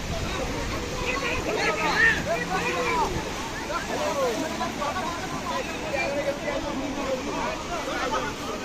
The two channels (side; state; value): both; identical; correlation 1.00